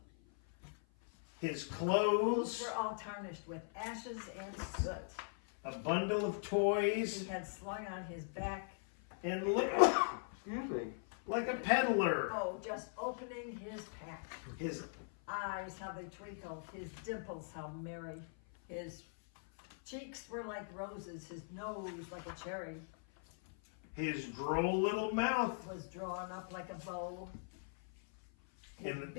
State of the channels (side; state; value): right; silent; 51 dB below the other